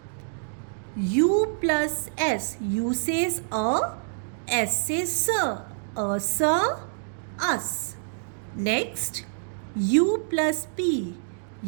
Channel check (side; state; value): left; silent; digital silence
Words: U plus S. U says A. S says sir. A sir. Us. Next, U plus P.